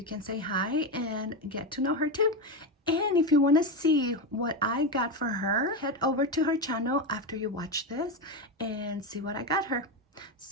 can say hi and get to know her too. And if you want to see what I got for her, head over to her channel after you watch this and see what I got her.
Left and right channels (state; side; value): normal; both; correlation 0.13